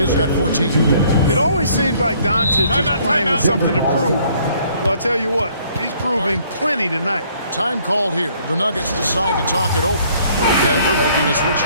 got 14. 2 minutes. It always seems like Doncic is playing with something to prove. Well, I'll tell you what, he's proving plenty tonight. Time called here. The Nuggets decide to talk it over. Denver making a switch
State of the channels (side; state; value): both; inverted; correlation -0.62